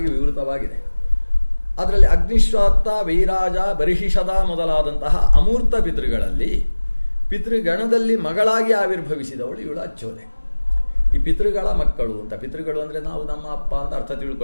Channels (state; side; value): inverted; both; correlation -1.00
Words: ವಿವೃತವಾಗಿದೆ. ಅದರಲ್ಲಿ ಅಗ್ನಿಶ್ವಾತ್ತ, ವೈರಾಜ, ಬರ್ಹಿಷದ ಮೊದಲಾದಂತಹ ಅಮೂರ್ತ ಪಿತೃಗಳಲ್ಲಿ ಪಿತೃಗಣದಲ್ಲಿ ಮಗಳಾಗಿ ಆವಿರ್ಭವಿಸಿದವಳು ಇವಳು ಅಚ್ಚೋದೆ. ಈ ಪಿತೃಗಳ ಮಕ್ಕಳು ಅಂತ, ಪಿತೃಗಳು ಅಂದರೆ ನಾವು ನಮ್ಮ ಅಪ್ಪ ಅಂತ ಅರ್ಥ